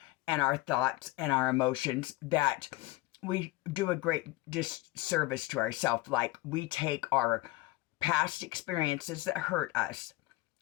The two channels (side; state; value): right; quieter; 19.4 dB